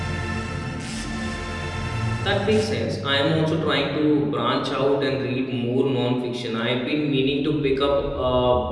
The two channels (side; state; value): both; identical; correlation 1.00